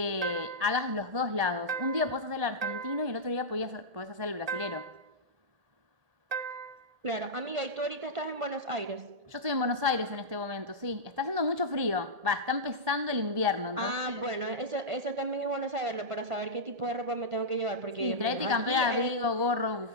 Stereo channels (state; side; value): late; left; 1.7 ms